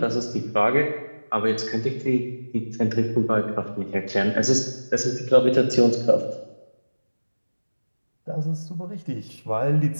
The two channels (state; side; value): inverted; both; correlation -1.00